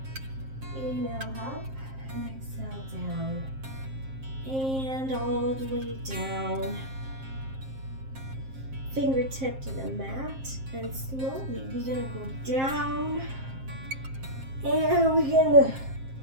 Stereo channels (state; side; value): late; left; 7.5 ms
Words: Inhale up and exhale down. And all the way down. Fingertip to the mat, and slowly we're gonna go down, and we're gonna